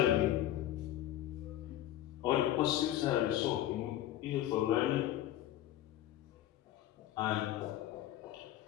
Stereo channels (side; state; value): right; quieter; 13.1 dB